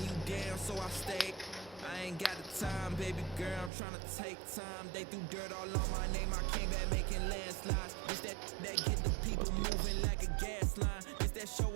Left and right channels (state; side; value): drops out; left; at 3.7 s